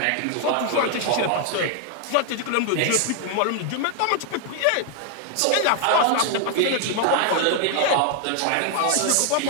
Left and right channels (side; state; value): both; different; correlation 0.00